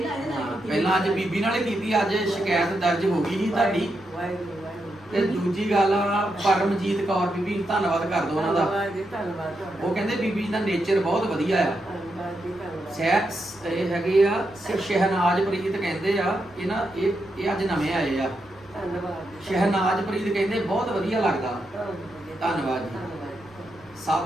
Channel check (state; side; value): noise; right; rumble, 27 dB below the sound